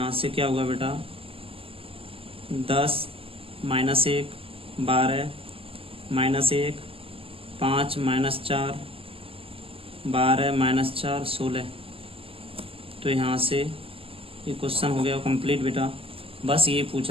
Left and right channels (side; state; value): left; late; 0.27 ms